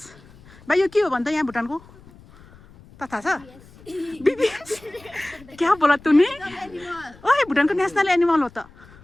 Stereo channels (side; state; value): left; noise; rumble, 24 dB below the sound